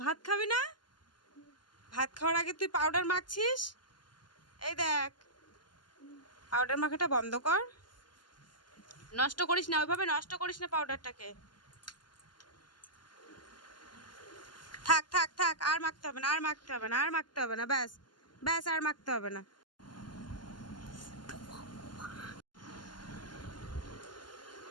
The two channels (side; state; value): right; late; 0.71 ms